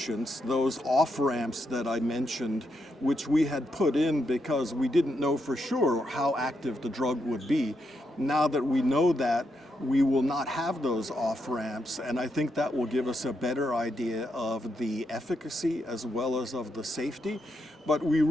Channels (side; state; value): both; normal; correlation 0.81